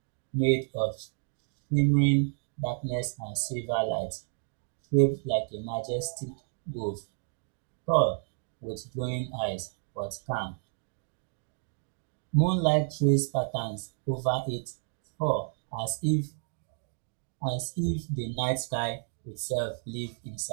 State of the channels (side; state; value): left; silent; 57 dB below the other